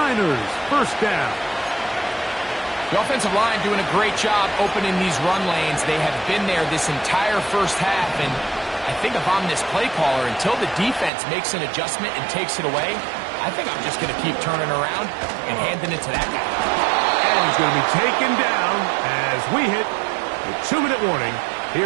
first down. The offensive line doing a great job opening these run lanes. They have been there this entire first half, and I think if I'm this play caller, until the defense makes an adjustment and takes it away, I think I'm just going to keep turning around and handing it to that guy. And he's going to be taken down as we hit the 2-minute warning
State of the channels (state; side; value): drops out; left; at 11.1 s